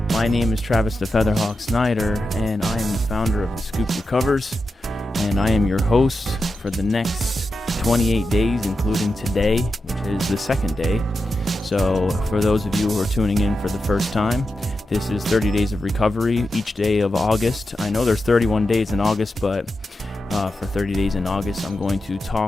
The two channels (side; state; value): both; normal; correlation 0.90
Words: My name is Travis the Featherhawk Snyder, and I am the founder of The Scoop Recovers, and I am your host for the next 28 days, including today, which is the second day. So for those of you who are tuning in for the first time, this is 30 Days of Recovery, each day of August. I know there's 31 days in August, but for 30 days in August, I'm going to